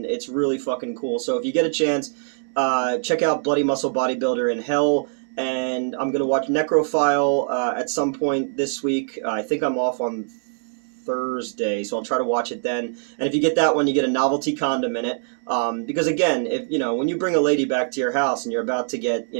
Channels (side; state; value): left; silent; digital silence